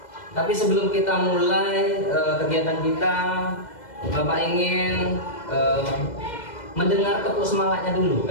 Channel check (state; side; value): late; right; 2.0 ms